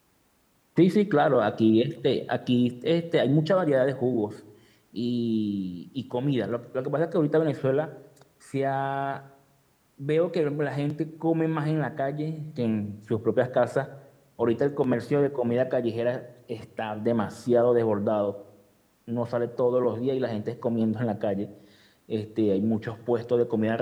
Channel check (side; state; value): both; identical; correlation 1.00